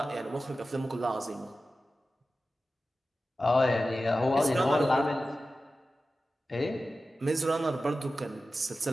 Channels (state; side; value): normal; both; correlation 0.94